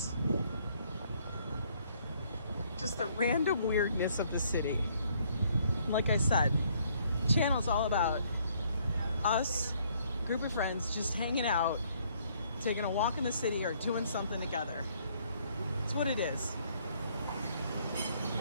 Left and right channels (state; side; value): inverted; both; correlation -0.66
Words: just the random weirdness of the city. Like I said, the channel's all about us, a group of friends, just hanging out, taking a walk in the city or doing something together. It's what it is.